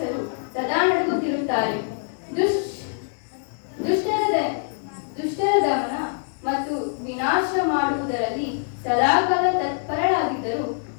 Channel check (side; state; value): right; silent; digital silence